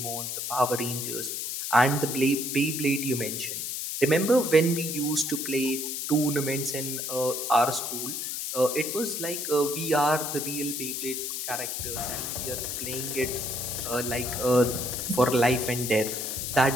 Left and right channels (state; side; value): noise; left; hiss, 3 dB below the sound